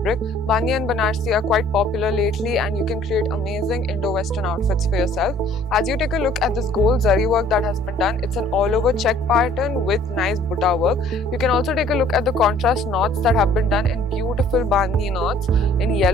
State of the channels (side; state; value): both; normal; correlation 0.56